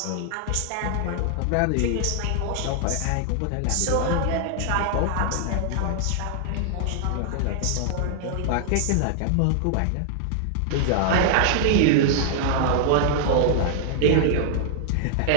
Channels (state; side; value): different; both; correlation -0.01